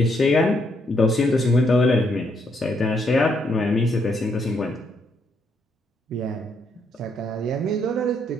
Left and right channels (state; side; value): normal; both; correlation 0.74